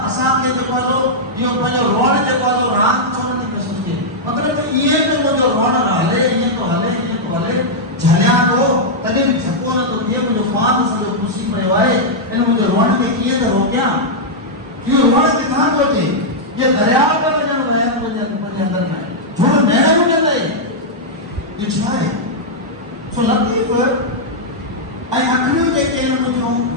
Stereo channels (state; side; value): normal; both; correlation -0.06